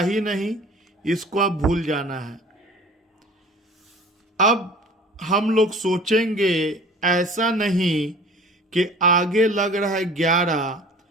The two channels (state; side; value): normal; both; correlation 0.45